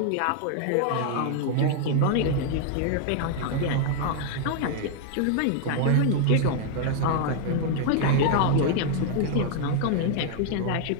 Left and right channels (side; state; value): both; different; correlation 0.00